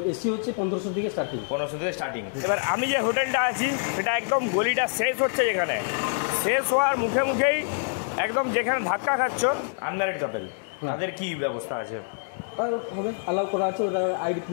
এসি হচ্ছে 1500 থেকে স্টার্টিং। এবার আমি যে হোটেলটা আছি সেটা একদম গলিটা শেষ হচ্ছে, যেখানে শেষ হওয়ার মুখে মুখেই একদম যেখানে ধাক্কা খাচ্ছ আনম্যারিড কাপল, তাদের কি ব্যবস্থা আছে? হবে অ্যালাউ করা আছে, ওরা আইডি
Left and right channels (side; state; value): right; silent; digital silence